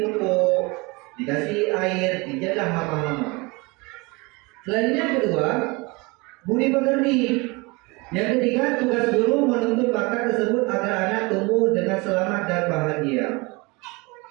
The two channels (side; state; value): left; quieter; 26.2 dB